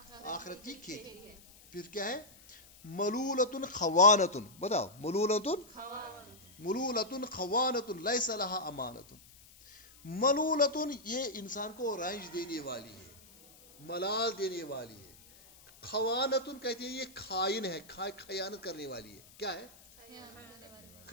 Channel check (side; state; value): left; noise; hiss, 23 dB below the sound